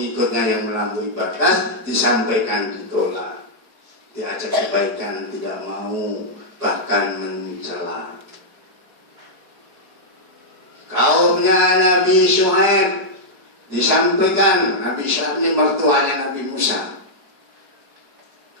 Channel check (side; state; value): left; late; 4.7 ms